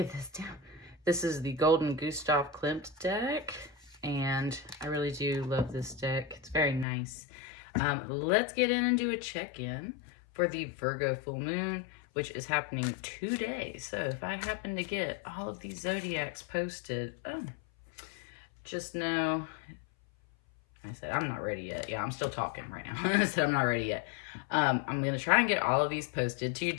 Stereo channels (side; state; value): right; drops out; at 6.9 s